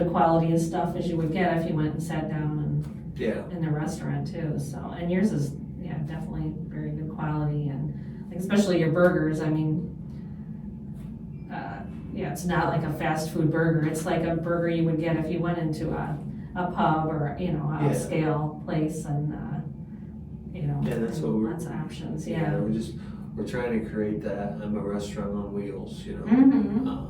a quality of stuff as you would get if you went and sat down yeah, in the restaurant too, so, and yours is, definitely very good quality, and like, especially your burgers, I mean, it's not like a fast food burger, it's like a burger you would get if you went into a pub or, Yeah. scale place, and, Yeah, that's what we're- lots of options, yeah. we're trying to create that, I'm a restaurant on wheels, Mhm.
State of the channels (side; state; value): both; identical; correlation 1.00